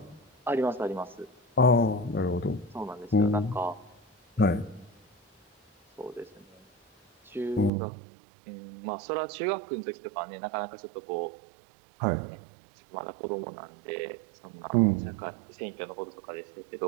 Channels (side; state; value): left; drops out; at 7.7 s